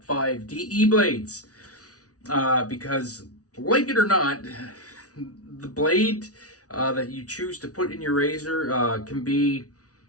5 DE blades. Because, like it or not, the blade that you choose to put in your razor can be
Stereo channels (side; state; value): right; late; 0.68 ms